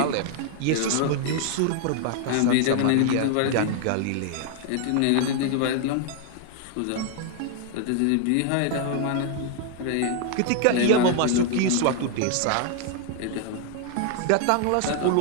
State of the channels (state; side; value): different; both; correlation 0.00